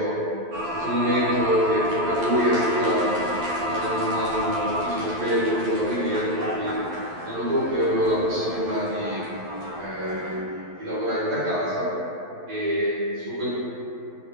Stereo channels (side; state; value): left; late; 12 ms